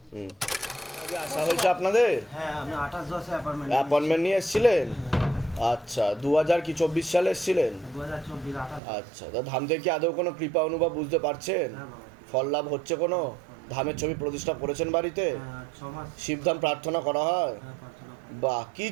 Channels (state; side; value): drops out; left; at 8.8 s